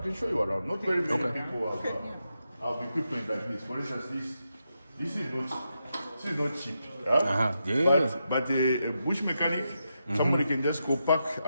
show you around. Not very many people have equipment like this. For instance, this is not cheap. Yeah. But a bush mechanic, somebody can just go park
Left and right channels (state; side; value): inverted; both; correlation -0.85